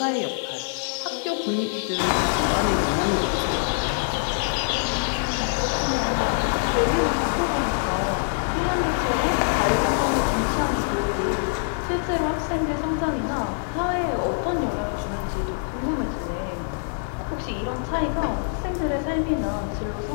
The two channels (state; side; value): silent; right; 62 dB below the other